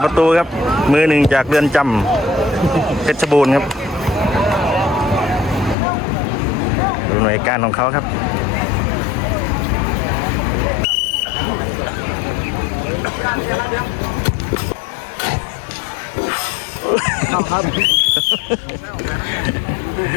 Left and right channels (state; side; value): drops out; right; at 5.8 s